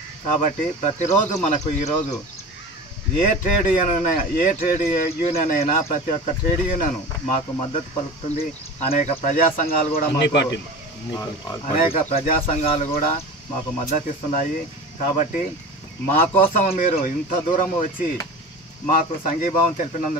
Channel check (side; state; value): both; normal; correlation 0.33